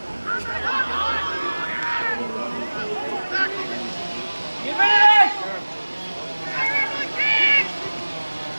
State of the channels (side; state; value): both; inverted; correlation -1.00